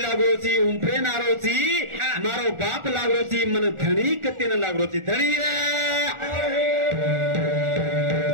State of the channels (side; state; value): left; late; 1.4 ms